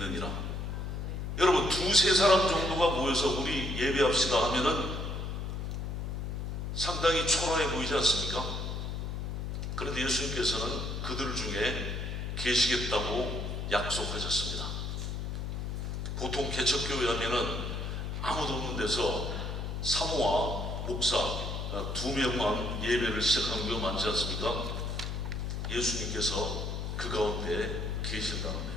여러분, 두세 사람 정도가 모여서 우리 예배합시다 하면은 상당히 초라해 보이지 않습니까? 그런데 예수님께서는 그들 중에 계시겠다고 약속하셨습니다. 보통 개척교회 하면은 아무도 없는 데서 사모와 목사 2명만 예배를 시작하는 경우가 많지 않습니까? 예수님께서 그 가운데 계신다는 거예요.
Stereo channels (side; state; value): left; noise; hum, 3 dB below the sound